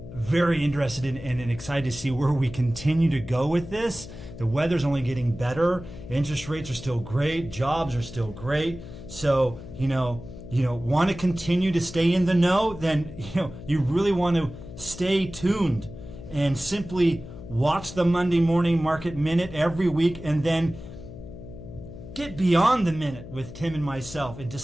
very interested in and excited to see where we continue to go with this. The weather's only getting better. Interest rates are still great. Jobs are still great. So, want to continue to stay in the know, then, you really want to stay tuned and simply watch the Monday Morning Market Minute every week, and then get beyond the minute with Tim and myself and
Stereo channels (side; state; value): left; noise; hum, 13 dB below the sound